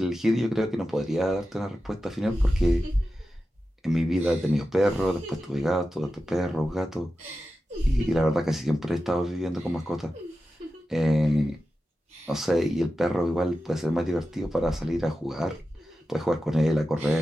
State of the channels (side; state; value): both; normal; correlation 0.92